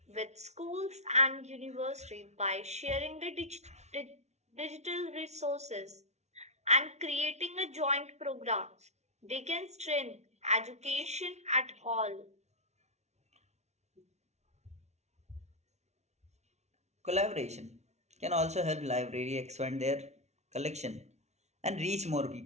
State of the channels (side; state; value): left; late; 0.32 ms